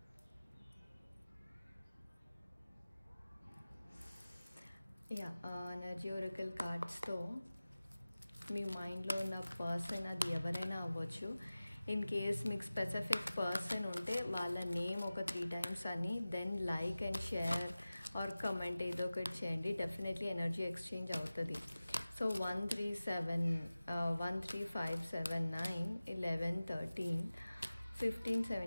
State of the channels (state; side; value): inverted; both; correlation -0.97